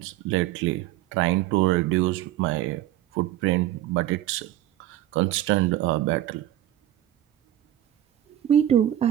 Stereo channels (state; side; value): quieter; left; 13.2 dB